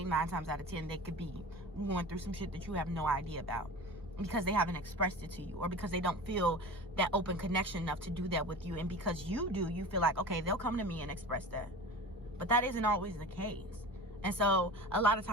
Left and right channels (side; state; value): both; normal; correlation 0.34